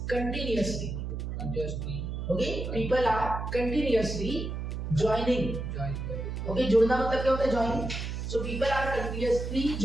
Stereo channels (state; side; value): noise; right; hum, 4 dB below the sound